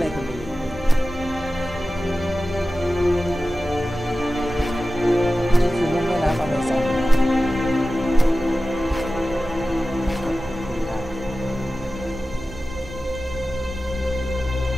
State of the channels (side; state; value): right; noise; hum, 16 dB below the sound